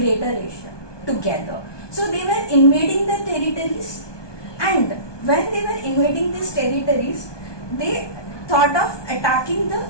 Asia together. So they were invading the territories, and when they were invading these territories, they thought of attacking the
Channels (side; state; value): right; late; 1.2 ms